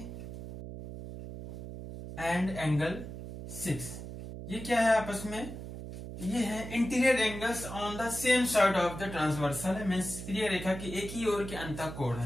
एंड एंगल 6, ये क्या है आपस में, ये है interior angles on the same side of the transversal है, मींस तिर्यक रेखा के एक ही ओर के अंतःकोण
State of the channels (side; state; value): right; noise; hum, 10 dB below the sound